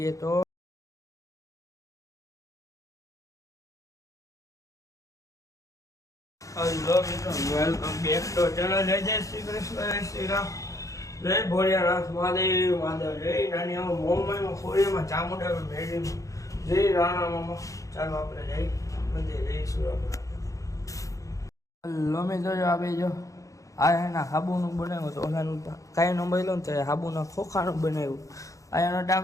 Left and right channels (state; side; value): late; right; 0.16 ms